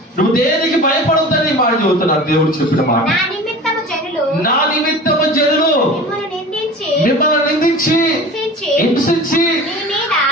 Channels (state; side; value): normal; both; correlation 0.37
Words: నువ్వు దేనికి భయపడొద్దని మాట చెబుతున్నాడు దేవుడు చెప్పిన మాట. నా నిమిత్తము జనులు మిమ్మల్ని నిందించి హింసించి